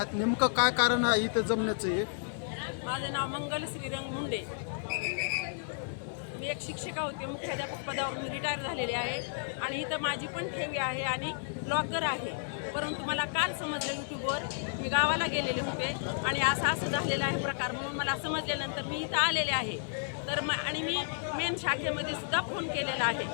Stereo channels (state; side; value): silent; right; 56 dB below the other